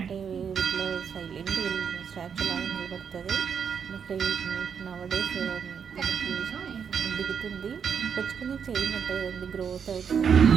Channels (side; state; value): left; quieter; 7.1 dB